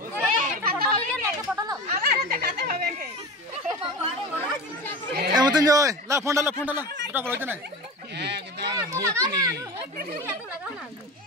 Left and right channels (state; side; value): normal; both; correlation 0.30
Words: হবে না পটল আমার দেখাতে হবে কে এমতন জয় লা ফোন ডালা দুটা বলতে নাই